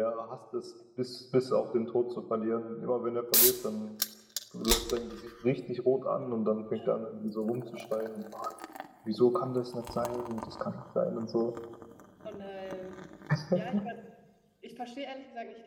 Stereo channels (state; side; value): identical; both; correlation 1.00